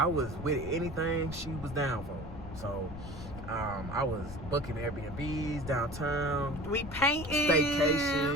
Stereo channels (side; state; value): left; noise; rumble, 12 dB below the sound